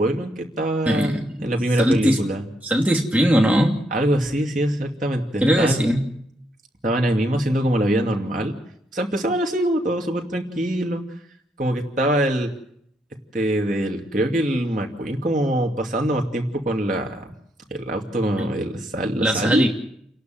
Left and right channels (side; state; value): both; normal; correlation 0.76